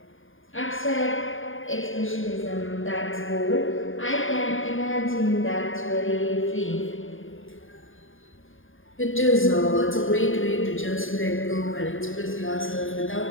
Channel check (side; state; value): right; late; 0.59 ms